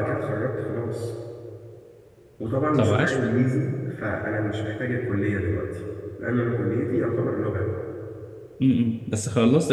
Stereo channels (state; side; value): identical; both; correlation 1.00